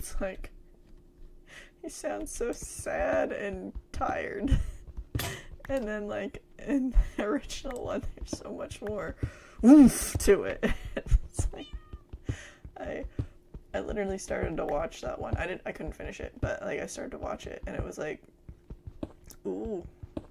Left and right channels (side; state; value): both; identical; correlation 1.00